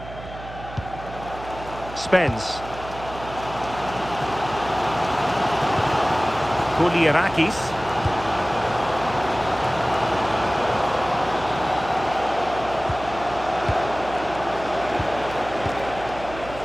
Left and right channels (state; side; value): noise; right; hum, 13 dB below the sound